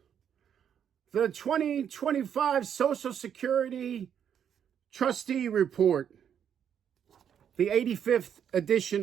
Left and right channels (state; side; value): quieter; left; 8.6 dB